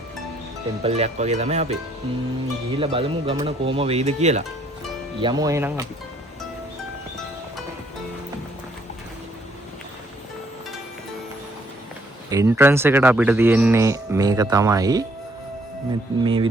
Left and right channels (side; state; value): both; normal; correlation 0.67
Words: ටෙම්පල් එකක් වගේ තමයි අපි. ගිහිල්ලා බලමු ගමන කොහම වෙයිද කියලා. යමු එහෙනම් අපි. එන්ට්‍රන්ස් එකට අපිට තියෙන්නේ මේක තමයි. මේ